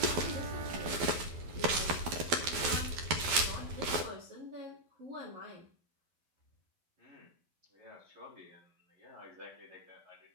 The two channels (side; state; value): left; late; 12 ms